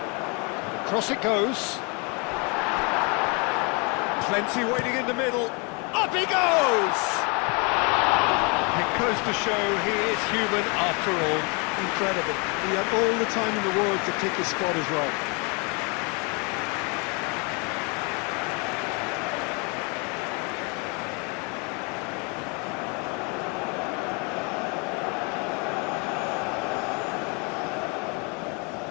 Across it goes. Plenty waiting in the middle. Up he goes! It goes to show he is human after all. Incredible. He had all the time in the world to pick his spot as well.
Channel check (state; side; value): quieter; right; 32.5 dB